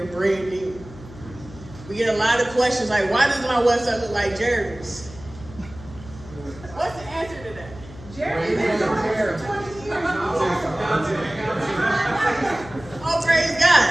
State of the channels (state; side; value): noise; left; hum, 17 dB below the sound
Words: branding. We get a lot of questions like, why does my website look like Jeremy's? What's the answer to that? Jeremy been doing it for 20 years. Oh, praise